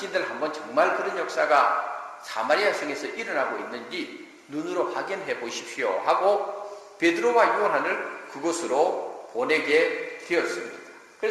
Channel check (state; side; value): identical; both; correlation 1.00